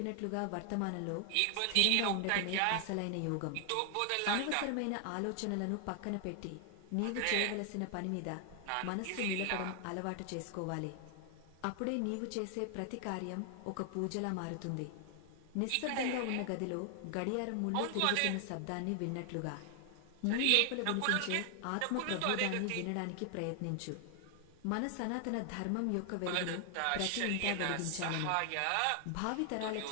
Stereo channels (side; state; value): both; different; correlation 0.00